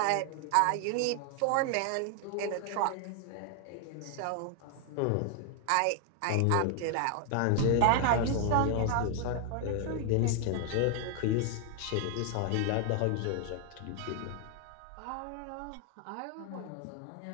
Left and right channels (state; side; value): different; both; correlation 0.00